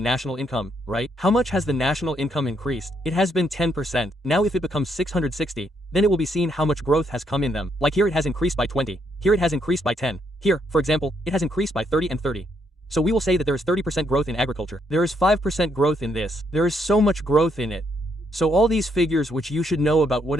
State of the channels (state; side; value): normal; both; correlation 0.74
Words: national income, right? How much has the national income increased? It has been 10%. Now if it becomes 660, then it will be seen how much growth has come in them. Like here it has increased by 20, here it has increased by 10, here, for example, it has increased by 30 and 30. So we will say that there is 30% growth in agriculture. There is 5% growth in this. There is so much growth in it. So all these figures which you should know about